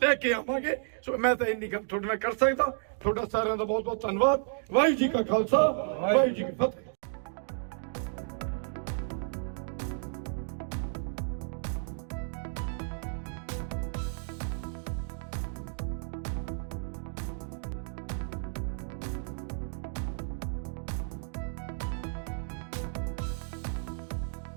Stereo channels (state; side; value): silent; left; digital silence